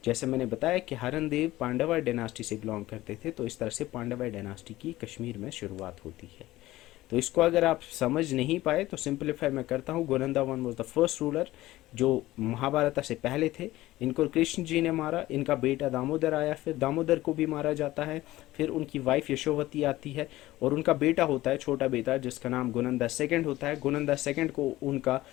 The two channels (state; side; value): quieter; right; 16.8 dB